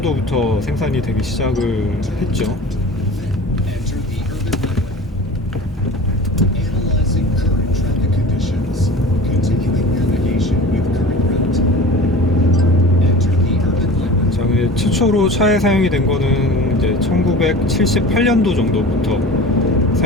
생산이 되기 시작을 했죠. 최초로 차에 사용이 된 거는 이제 1978년도 정도부터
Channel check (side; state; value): both; normal; correlation 0.38